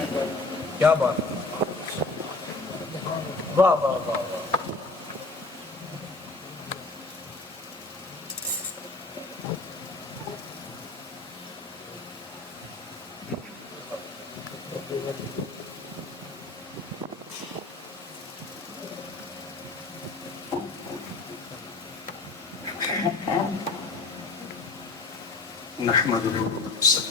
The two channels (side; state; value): right; quieter; 3.4 dB